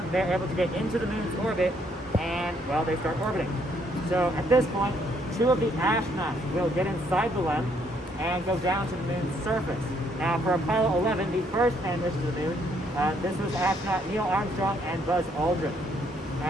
they're able to get into the moon's orbit and, well, they start orbiting. So at this point, 2 of the astronauts will get inside the LEM and go down to the moon's surface. Now for Apollo 11, the first man mission to the moon, this was astronaut Neil Armstrong and Buzz Aldrin.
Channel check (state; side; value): normal; both; correlation 0.69